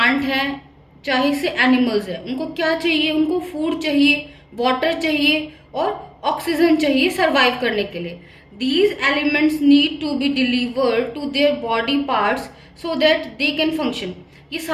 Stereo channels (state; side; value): identical; both; correlation 1.00